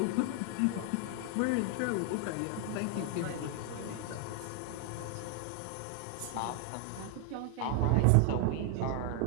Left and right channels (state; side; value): different; both; correlation 0.00